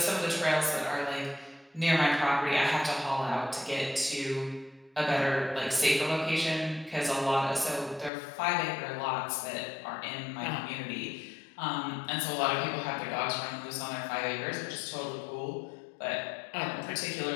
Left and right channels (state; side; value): drops out; right; at 8.1 s